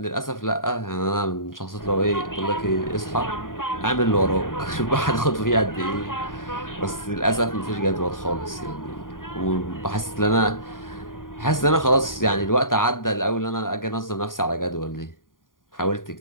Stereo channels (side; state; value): right; late; 0.90 ms